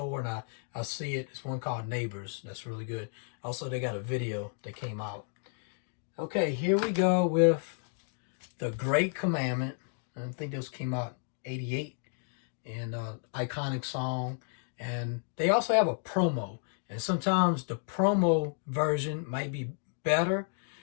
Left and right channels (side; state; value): right; silent; 56 dB below the other